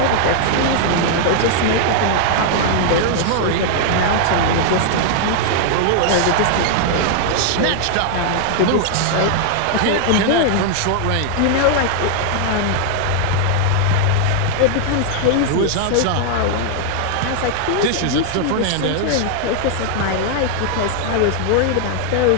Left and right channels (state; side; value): different; both; correlation 0.00